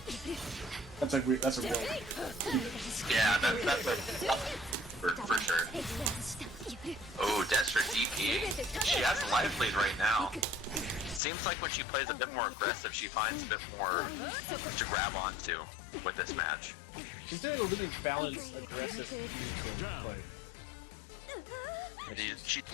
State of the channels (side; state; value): right; drops out; at 11.2 s